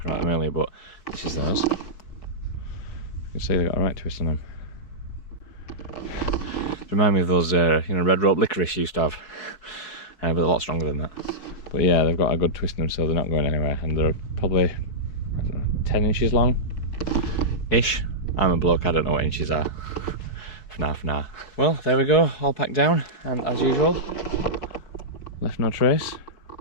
about them earlier, but this is those. You can see they've got a right twist on them. Remind me of those red rope licorice used to have, but a lot stronger than that. But yeah, they've got a good twist in them, so they're not going anywhere, and they're probably, I don't know, 10 inches long ish. I'm a bloke, I don't know what inches are. For now. Well, there we go, all packed down, and as usual, left no trace,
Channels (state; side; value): late; right; 4.7 ms